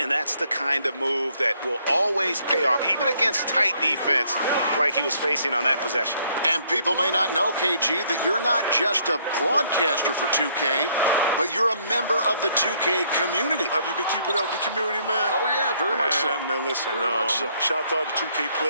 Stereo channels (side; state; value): both; inverted; correlation -0.67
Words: that's the kind of move that will always pay off, even against tight defense like he was facing on that possession. And people may not know, KG, that you're not just a broadcaster for 2K, but you're a member of the 2K community. Have you been keeping up with the community, man? Oh, yeah, very much so. Man, listen, so. Shout out to all the 2K